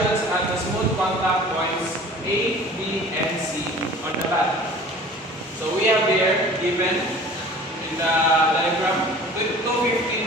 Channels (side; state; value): both; normal; correlation 0.45